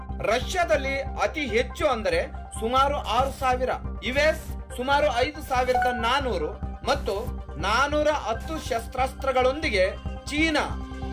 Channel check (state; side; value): identical; both; correlation 1.00